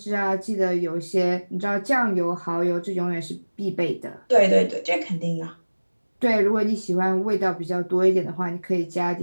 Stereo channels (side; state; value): both; inverted; correlation -1.00